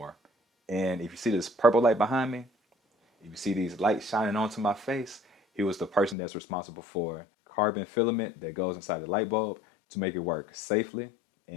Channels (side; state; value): right; drops out; at 6.2 s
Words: And if you see this purple light behind me, if you see these lights shining onto my face, he was the person that's responsible for carbon filament that goes inside the light bulb to make it work safely